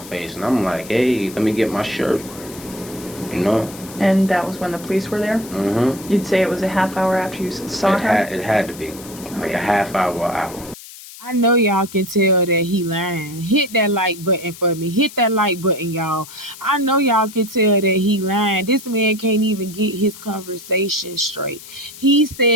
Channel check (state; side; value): noise; left; hiss, 16 dB below the sound